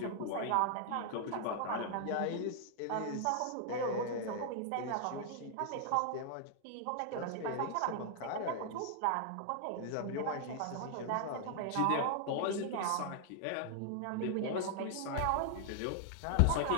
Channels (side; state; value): both; different; correlation 0.00